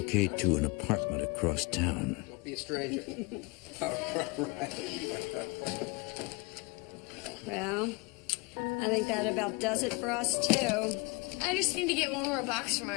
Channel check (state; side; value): quieter; right; 27.7 dB